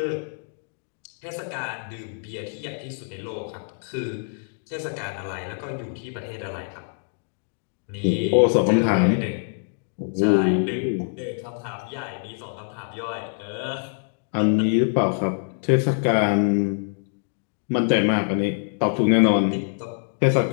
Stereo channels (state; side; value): silent; right; 62 dB below the other